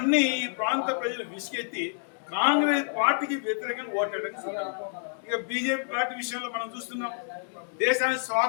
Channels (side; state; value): right; silent; digital silence